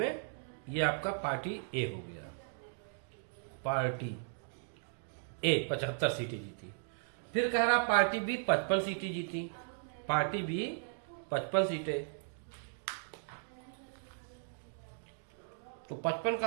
ये आपका पार्टी ए हो गया। पार्टी ए 75 सीटें जीती। फिर कह रहा पार्टी बी 55 सीटें जीती, पार्टी बी 55 सीटें। तो 55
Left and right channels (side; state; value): left; silent; digital silence